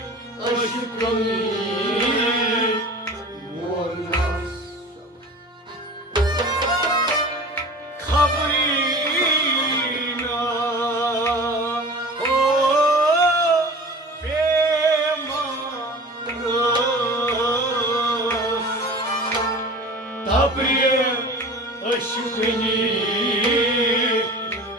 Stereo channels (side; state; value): both; normal; correlation 0.38